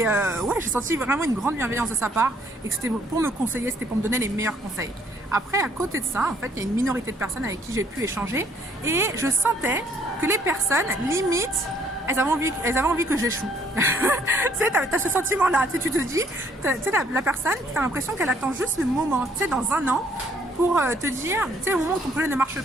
ouais, j'ai senti vraiment une grande bienveillance de sa part et que c'était pour me conseiller, c'était pour me donner les meilleurs conseils. Après, à côté de ça, en fait, il y a une minorité de personnes avec qui j'ai pu échanger et je sentais que les personnes, limite, elles avaient envie que j'échoue. Tu sais, t'as ce sentiment-là, tu sais, tu te dis, tu sais, la personne, t'as l'impression qu'elle attend juste le moment, tu sais, dans un an, pour te dire, tu sais, au moment où ton projet ne marche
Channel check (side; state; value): both; normal; correlation 0.64